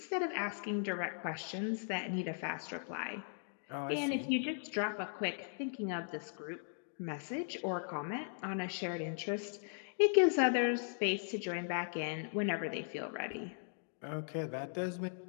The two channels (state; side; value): silent; right; digital silence